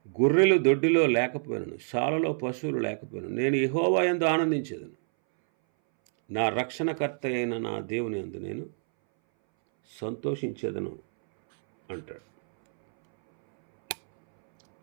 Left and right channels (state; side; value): silent; left; 60 dB below the other